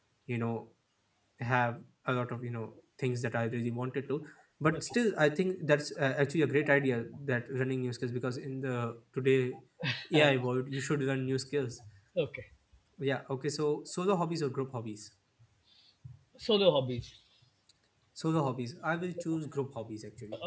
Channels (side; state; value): both; identical; correlation 1.00